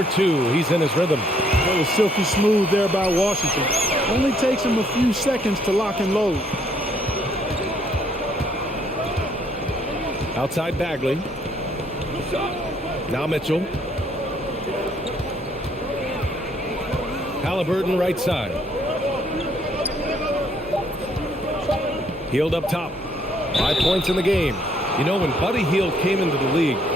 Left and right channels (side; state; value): both; normal; correlation 0.67